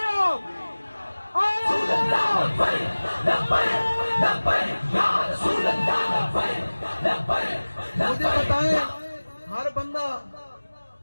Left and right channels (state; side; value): inverted; both; correlation -1.00